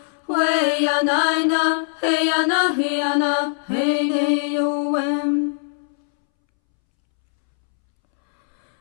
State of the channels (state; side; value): silent; right; 65 dB below the other